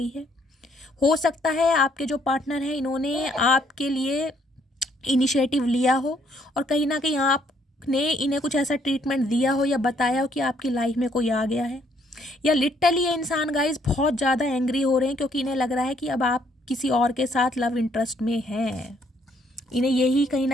है। हो सकता है आपके जो पार्टनर हैं इन्होंने आपके लिए इनिशिएटिव लिया हो और कहीं ना कहीं आपने इन्हें कुछ ऐसा ट्रीटमेंट दिया हो या बताया हो कि आपकी लाइफ में कोई आ गया है। या लिटरली ये इंसान गाइज बहुत ज़्यादा एंग्री हो रहे हैं क्योंकि इन्हें लग रहा है कि अब आप किसी और के साथ लव इंटरेस्ट में हैं। इन्हें यही कहीं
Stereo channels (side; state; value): both; normal; correlation 0.68